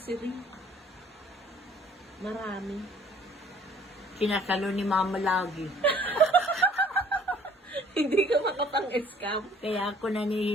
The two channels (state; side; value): normal; both; correlation 0.55